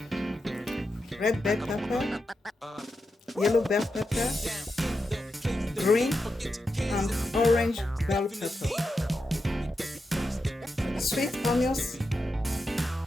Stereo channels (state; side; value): normal; both; correlation 0.88